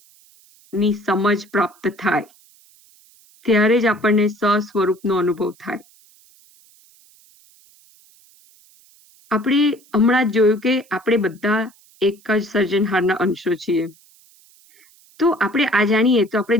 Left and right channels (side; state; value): right; noise; hiss, 29 dB below the sound